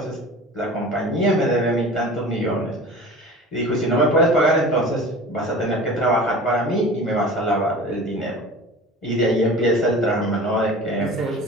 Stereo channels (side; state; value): both; normal; correlation 0.38